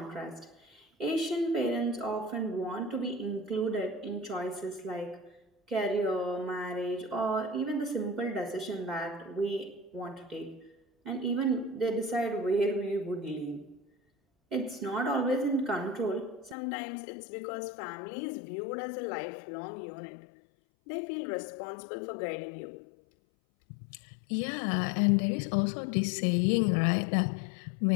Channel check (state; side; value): drops out; right; at 16.6 s